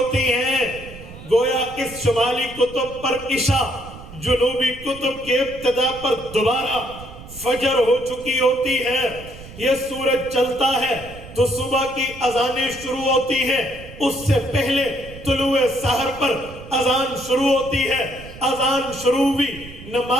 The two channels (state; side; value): noise; right; rumble, 16 dB below the sound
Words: ہیں۔ گویا اس شمالی قطب پر عشاء، جنوبی قطب کے ابتدا پر دوبارہ فجر ہو چکی ہوتی ہے۔ یہ سورج چلتا ہے تو صبح کی اذانیں شروع ہوتی ہیں، اس سے پہلے طلوع سحر پر اذان شروع ہوتی ہے۔ اذان شروع ہوئی،